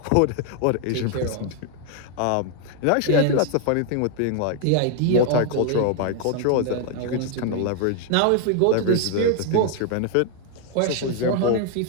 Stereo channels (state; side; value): different; both; correlation 0.00